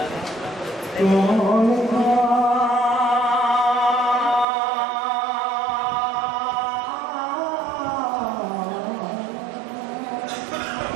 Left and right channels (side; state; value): left; drops out; at 4.5 s